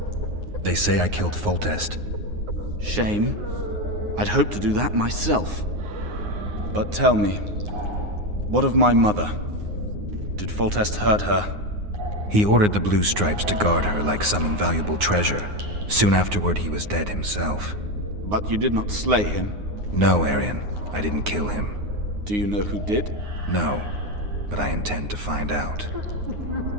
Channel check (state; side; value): late; left; 9.6 ms